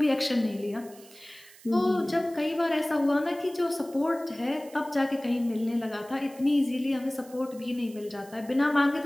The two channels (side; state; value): right; noise; hiss, 22 dB below the sound